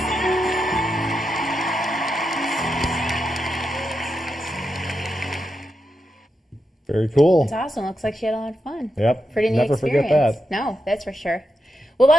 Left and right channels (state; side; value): normal; both; correlation 0.87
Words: Very cool. It's awesome. Looks like she had a lot of fun. Yep. Pretty neat Never experience. forget that. No, that's for sure. Well, a